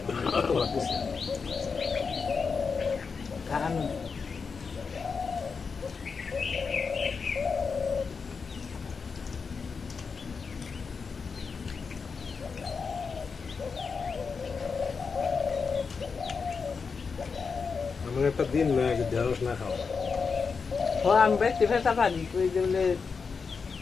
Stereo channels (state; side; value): quieter; right; 5.3 dB